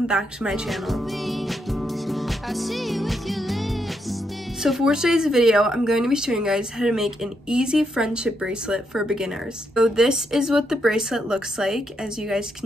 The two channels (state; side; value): normal; both; correlation 0.79